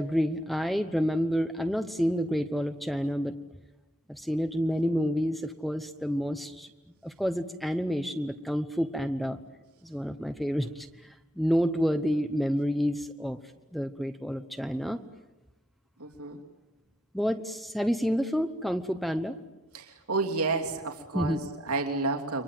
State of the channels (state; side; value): normal; both; correlation 0.79